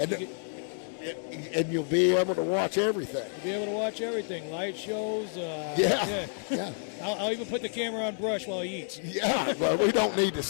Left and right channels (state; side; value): silent; right; 58 dB below the other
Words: And you'll be able to watch everything. You'll be able to watch everything. Light shows. Yeah. I'll even put the camera on Brush while he eats. Yeah, well, we don't need to